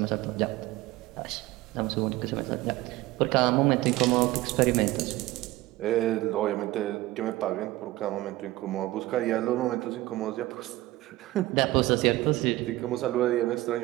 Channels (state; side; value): quieter; left; 17.8 dB